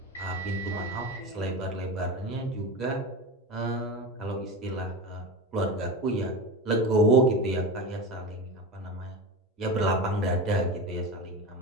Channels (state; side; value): normal; both; correlation 0.25